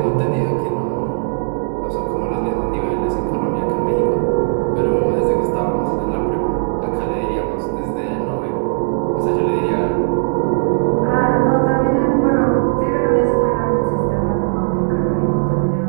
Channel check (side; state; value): left; silent; digital silence